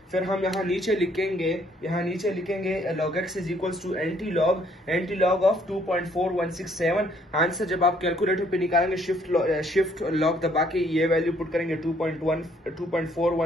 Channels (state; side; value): normal; both; correlation 0.65